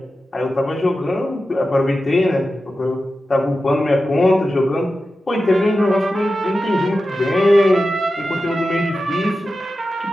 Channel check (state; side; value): normal; both; correlation 0.92